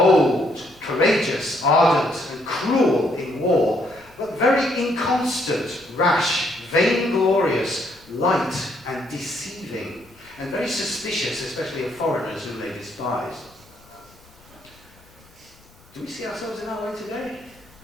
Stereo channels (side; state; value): left; noise; rumble, 28 dB below the sound